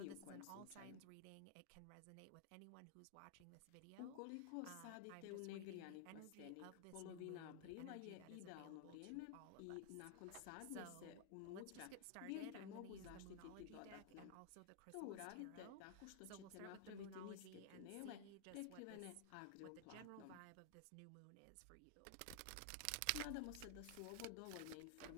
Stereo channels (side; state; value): both; different; correlation 0.00